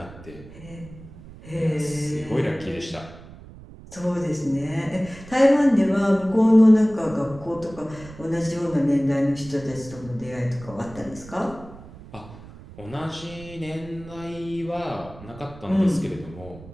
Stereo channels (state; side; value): noise; right; rumble, 18 dB below the sound